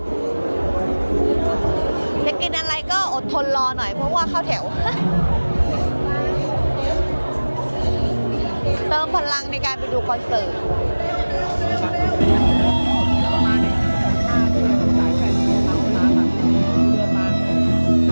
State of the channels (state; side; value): inverted; both; correlation -1.00